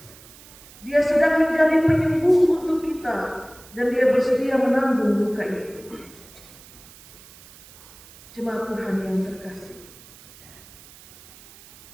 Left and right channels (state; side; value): noise; right; hiss, 21 dB below the sound